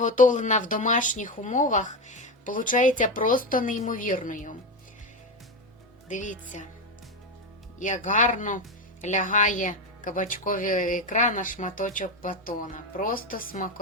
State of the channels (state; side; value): normal; both; correlation 0.14